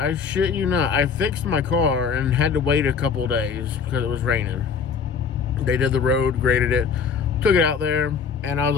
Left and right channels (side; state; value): right; quieter; 6.1 dB